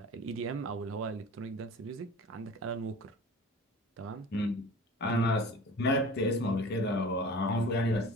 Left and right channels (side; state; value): both; normal; correlation 0.40